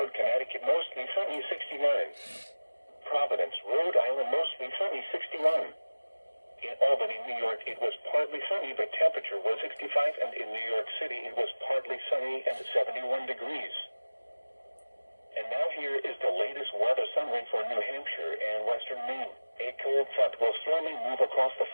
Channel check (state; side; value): inverted; both; correlation -1.00